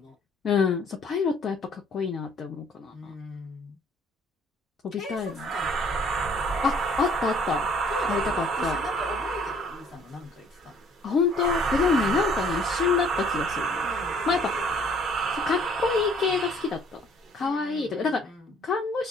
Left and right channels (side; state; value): both; normal; correlation 0.58